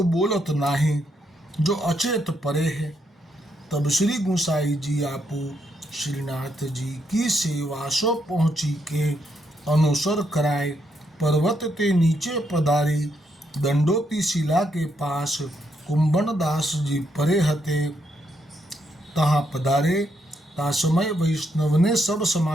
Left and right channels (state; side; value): normal; both; correlation 0.77